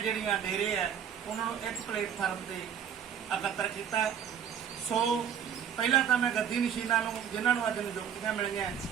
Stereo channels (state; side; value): quieter; left; 8.5 dB